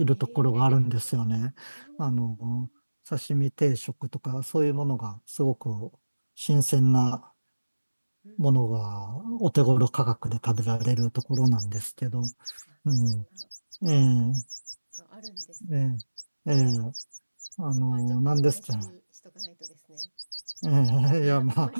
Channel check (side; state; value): both; inverted; correlation -1.00